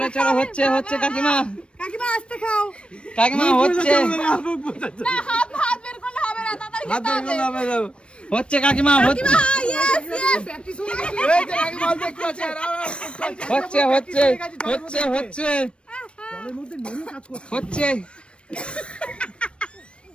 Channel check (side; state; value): right; late; 0.058 ms